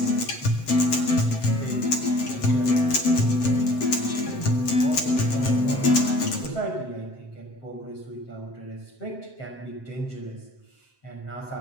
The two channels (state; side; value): late; right; 7.7 ms